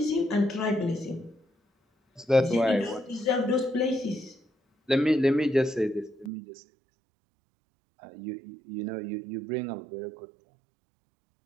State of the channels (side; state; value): left; drops out; at 6.3 s